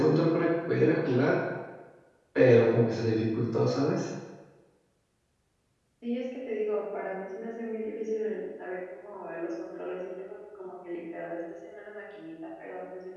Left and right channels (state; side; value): identical; both; correlation 1.00